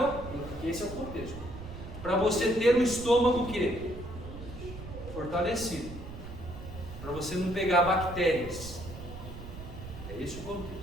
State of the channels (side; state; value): right; noise; rumble, 11 dB below the sound